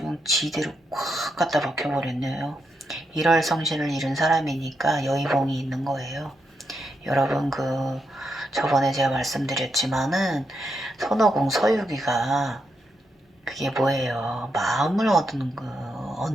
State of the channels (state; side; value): normal; both; correlation 0.82